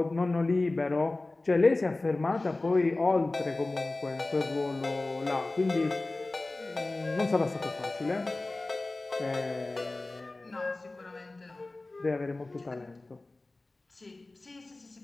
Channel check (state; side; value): quieter; right; 3.0 dB